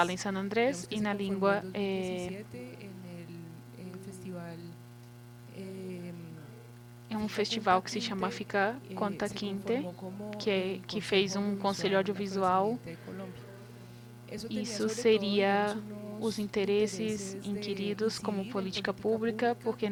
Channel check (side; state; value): both; identical; correlation 1.00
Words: em San Andrés e na língua é um festival que se chama Fica Conta Quinte, que fez um conselho audiovisual. Isso seria os interesses inquiridos como política pública, porque